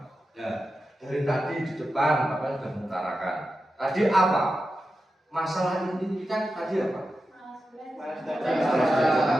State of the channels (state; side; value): normal; both; correlation 0.91